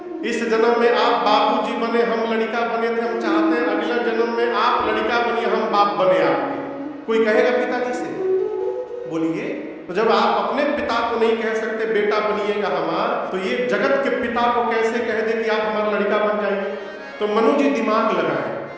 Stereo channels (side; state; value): both; identical; correlation 1.00